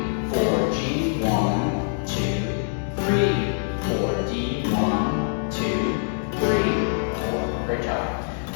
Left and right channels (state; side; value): silent; right; 62 dB below the other